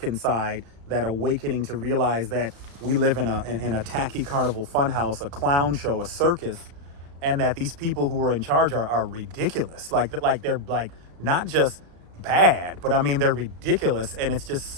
inside, that awakening to realize that we live in a tacky carnival funhouse, a clown show, a circus, and that these people who are in charge are ridiculous. Like they're like not just bad, but I mean they're ridiculous, and it's just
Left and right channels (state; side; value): late; left; 35 ms